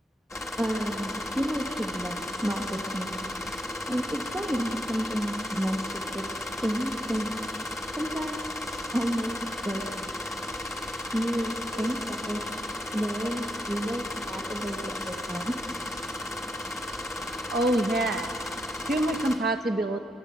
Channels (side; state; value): both; normal; correlation 0.81